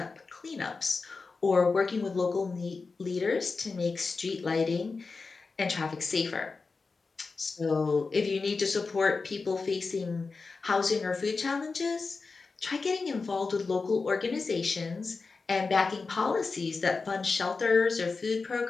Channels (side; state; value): right; quieter; 4.3 dB